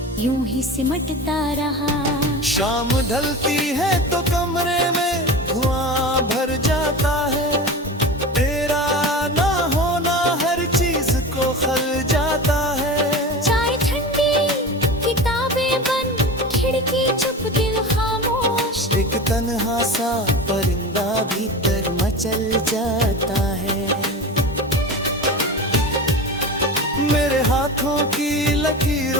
यूं ही सिमटता रहा। शाम ढलती है तो कमरे में धुआं भर जाता है, तेरा ना होना हर चीज को खल जाता है। चाय ठंडी किताबें बंद खिड़की चुप दिल खामोश, एक तन्हा सा परिंदा भीतर मचल जाता है। मेरे हाथों की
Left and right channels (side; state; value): both; normal; correlation 0.30